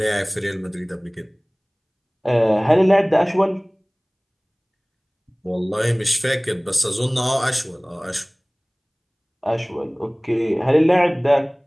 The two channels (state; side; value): identical; both; correlation 1.00